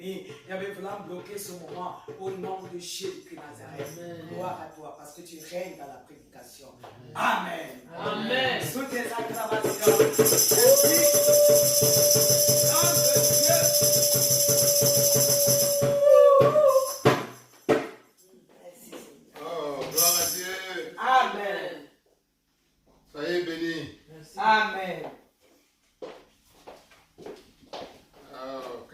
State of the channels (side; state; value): both; identical; correlation 1.00